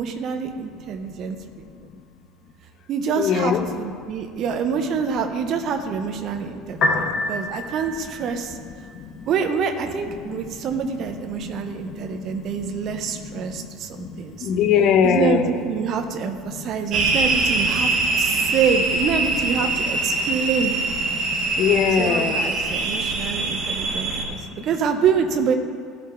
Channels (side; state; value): both; normal; correlation 0.44